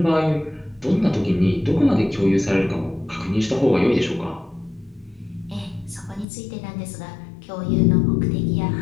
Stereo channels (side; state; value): right; drops out; at 6.2 s